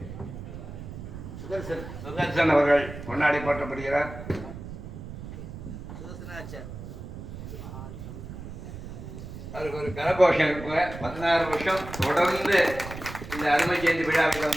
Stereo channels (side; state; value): right; noise; rumble, 11 dB below the sound